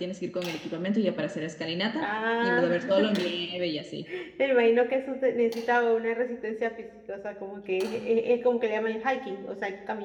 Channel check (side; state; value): both; identical; correlation 1.00